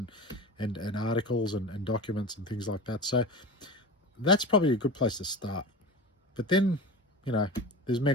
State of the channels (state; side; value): normal; both; correlation 0.30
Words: articles and documents and things like that. So that's probably a good place to start. But then, there's